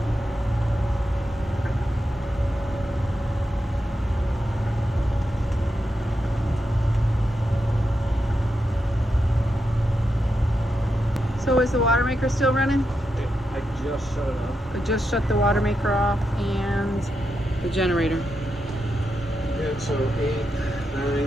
So is the water maker still running? I just shut it off. I just shut the water maker off and the generator. Yeah, so 8,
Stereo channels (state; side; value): normal; both; correlation 0.86